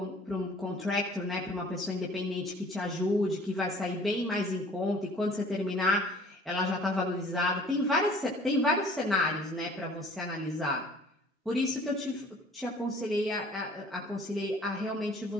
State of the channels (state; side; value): normal; both; correlation 0.51